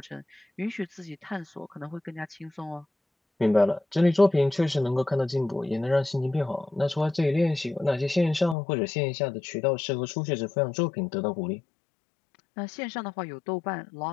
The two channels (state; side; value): drops out; right; at 8.6 s